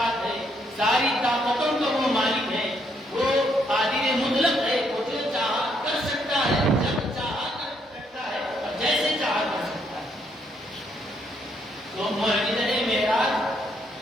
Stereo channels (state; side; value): normal; both; correlation 0.73